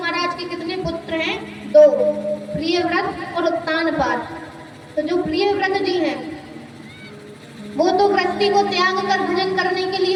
के कितने पुत्र हैं? 2, प्रियव्रत और उत्तानपाद। तो जो प्रियव्रत जी हैं वो तो गृहस्थी को त्याग कर भजन करने के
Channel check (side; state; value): both; identical; correlation 1.00